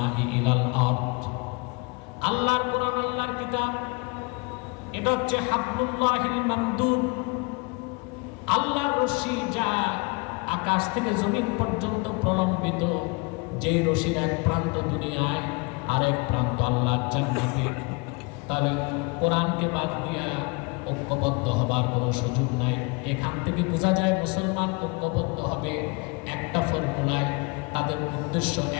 ইলাল আরদ। আল্লাহর কোরআন, আল্লাহর কিতাব, এটা হচ্ছে হাবলুল্লাহিল মামদুদ, আল্লাহর রশি, যা আকাশ থেকে জমিন পর্যন্ত প্রলম্বিত। যেই রশির এক প্রান্ত দুনিয়ায়, আরেক প্রান্ত আল্লাহর জান্নাতে। তাহলে কোরআনকে বাদ দিয়া ঐক্যবদ্ধ হবার কোনো সুযোগ নাই। এখান থেকে বোঝা যায় মুসলমান ঐক্যবদ্ধ হবে একটা ফর্মুলায়, তাদের উদ্দেশ্য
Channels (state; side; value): quieter; right; 30.0 dB